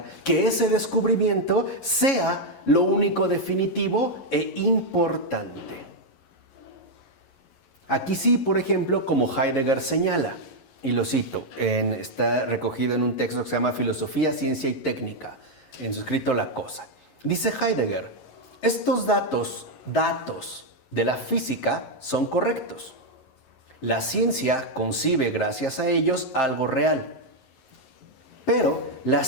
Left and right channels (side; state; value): right; late; 11 ms